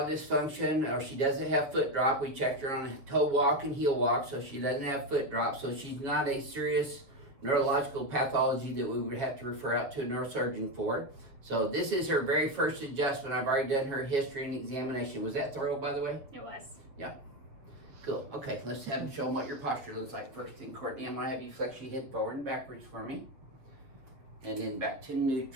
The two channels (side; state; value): left; late; 7.1 ms